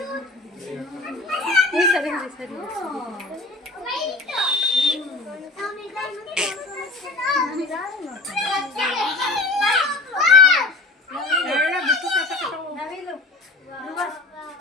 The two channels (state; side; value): quieter; right; 3.3 dB